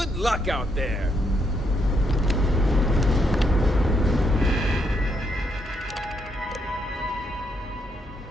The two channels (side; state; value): both; normal; correlation 0.76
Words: luck out there!